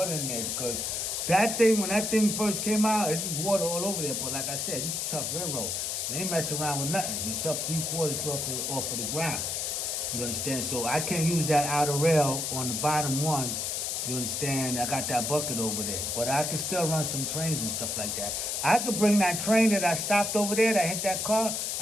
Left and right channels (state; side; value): noise; left; hiss, 1 dB below the sound